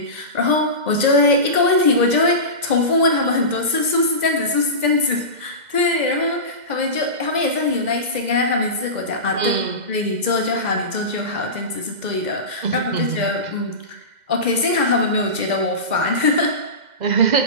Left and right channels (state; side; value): late; left; 2.0 ms